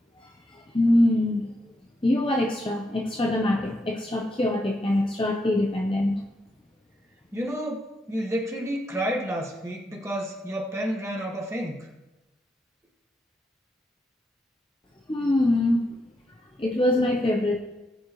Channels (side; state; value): both; normal; correlation 0.81